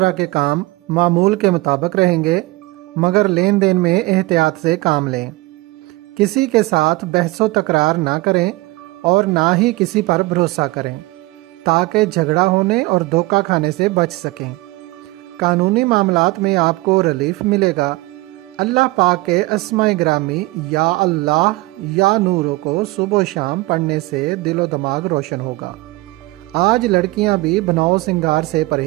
کے کام معمول کے مطابق رہیں گے، مگر لین دین میں احتیاط سے کام لیں۔ کسی کے ساتھ بحث و تکرار نہ کریں اور نہ ہی کسی پر بھروسہ کریں تاکہ جھگڑا ہونے اور دھوکہ کھانے سے بچ سکیں۔ قانونی معاملات میں آپ کو ریلیف ملے گا۔ اللہ پاک کے اسماء گرامی یا اللہ یا نوروں کو صبح و شام پڑھنے سے دل و دماغ روشن ہوگا۔ آج لڑکیاں بھی بناؤ سنگار سے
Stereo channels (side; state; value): left; quieter; 21.1 dB